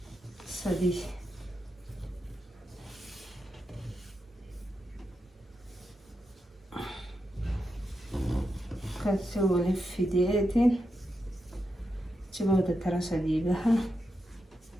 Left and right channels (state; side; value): normal; both; correlation 0.86